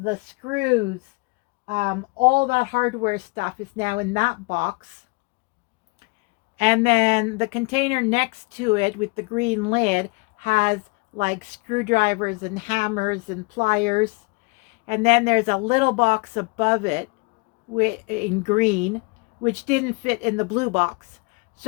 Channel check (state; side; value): quieter; right; 29.0 dB